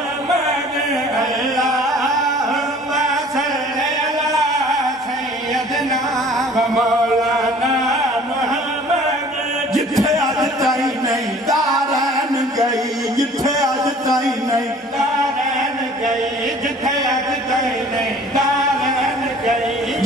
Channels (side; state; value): both; normal; correlation 0.50